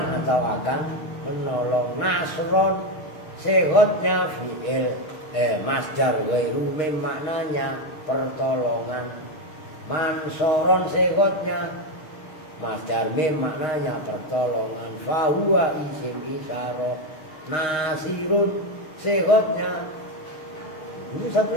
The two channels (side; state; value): right; late; 6.4 ms